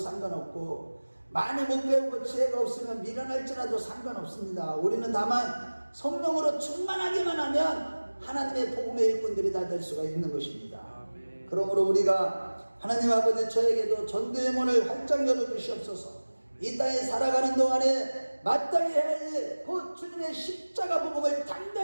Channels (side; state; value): both; inverted; correlation -1.00